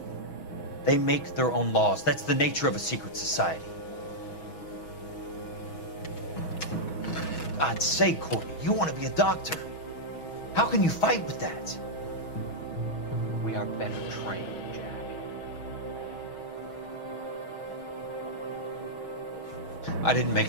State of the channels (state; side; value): late; right; 6.3 ms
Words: They make their own laws. That's the nature of a secret society. God's sake, Courtney, you want to be a doctor. How can you fight with that? We are better trained, Jack. I didn't make